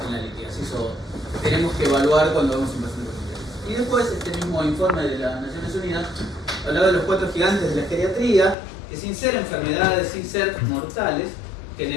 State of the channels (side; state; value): right; drops out; at 8.6 s